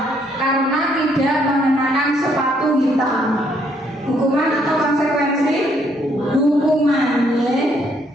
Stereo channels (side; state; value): both; normal; correlation 0.69